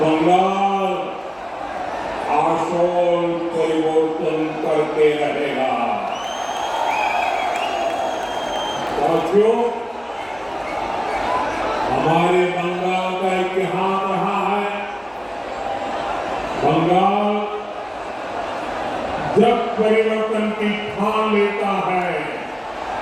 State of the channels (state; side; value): noise; right; hum, 29 dB below the sound